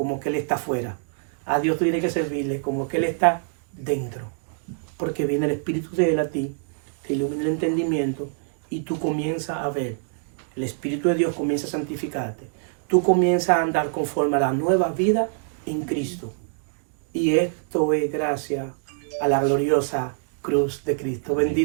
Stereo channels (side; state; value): left; silent; digital silence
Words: que Él está afuera. A Dios tú tienes que servirle como que Él está dentro, porque viene el Espíritu de Él a ti, te ilumina el entendimiento y tú comienzas a ver. El Espíritu de Dios comienza a santificarte. Tú comienzas a andar conforme a la nueva vida en Cristo. Y esto es gracias a la gloriosa cruz de Cristo.